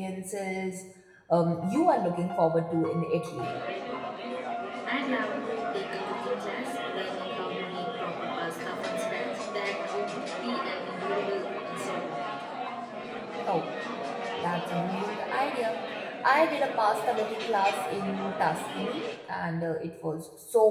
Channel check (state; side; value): identical; both; correlation 1.00